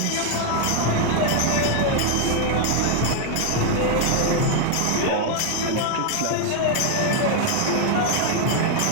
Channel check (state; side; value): different; both; correlation 0.00